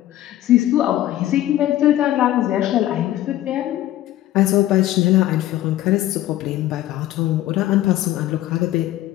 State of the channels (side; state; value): right; quieter; 14.1 dB